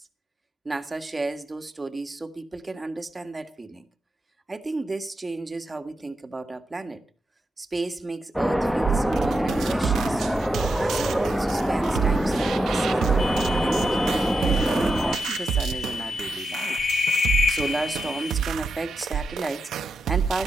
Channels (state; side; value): normal; both; correlation 0.87